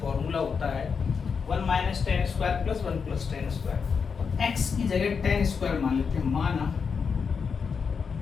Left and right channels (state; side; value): quieter; right; 5.9 dB